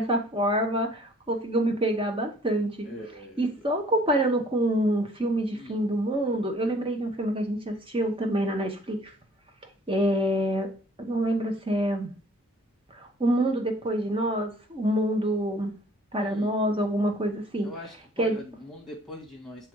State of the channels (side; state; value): both; normal; correlation 0.56